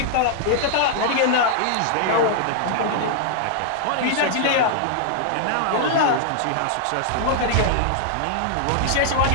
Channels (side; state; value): both; different; correlation -0.01